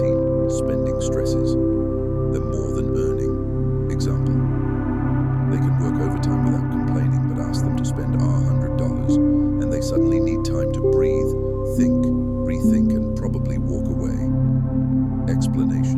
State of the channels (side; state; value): both; identical; correlation 1.00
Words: Spending stresses them more than earning. Example, they can work overtime without complaining, but ask them to spend $100 and they suddenly need time to breathe, think, rethink, and probably walk away.